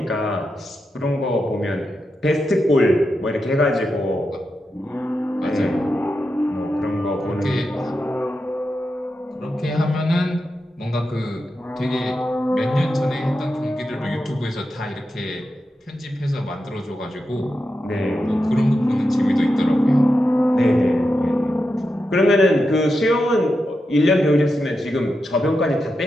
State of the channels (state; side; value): normal; both; correlation 0.88